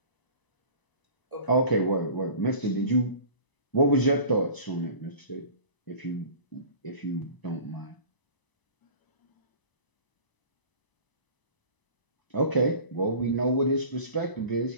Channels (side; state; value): right; late; 1.0 ms